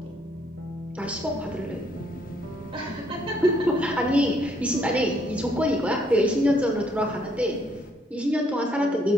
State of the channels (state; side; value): normal; both; correlation 0.69